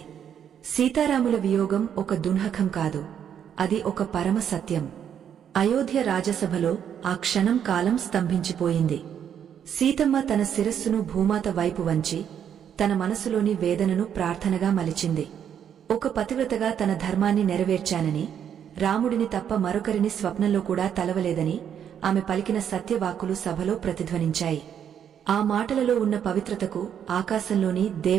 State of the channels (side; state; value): left; quieter; 8.8 dB